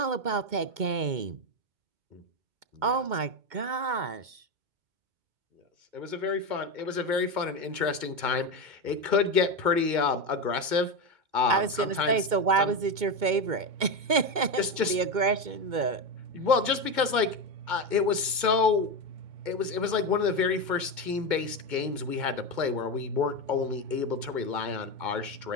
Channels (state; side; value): late; left; 2.2 ms